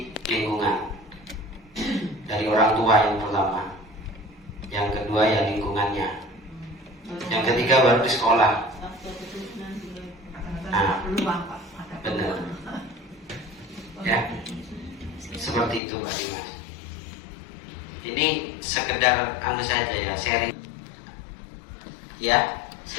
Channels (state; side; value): drops out; right; at 15.8 s